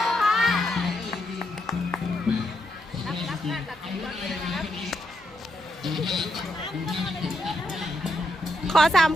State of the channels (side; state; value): both; normal; correlation 0.81